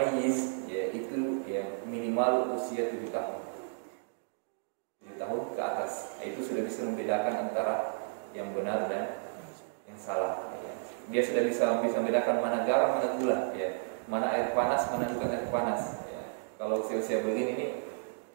ya, itu ya, minimal usia 7 tahun. 7 tahun ke atas. Itu sudah bisa membedakan antara yang benar dan yang salah. Dia sudah bisa membedakan mana garam, mana gula, ya, mana air panas, mana bukan air panas. Ya. Kalau usia-usia begini ini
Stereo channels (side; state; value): left; silent; digital silence